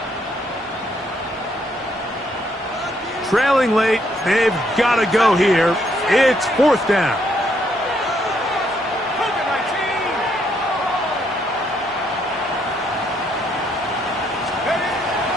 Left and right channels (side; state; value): both; normal; correlation 0.72